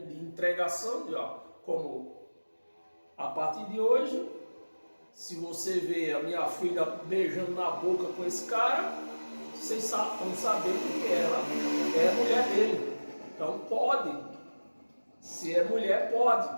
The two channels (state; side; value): inverted; both; correlation -1.00